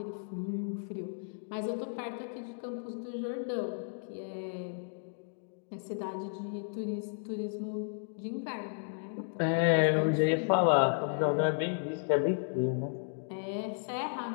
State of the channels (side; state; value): right; silent; digital silence